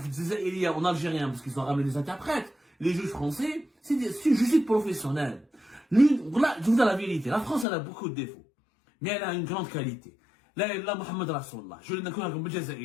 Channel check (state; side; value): drops out; right; at 7.7 s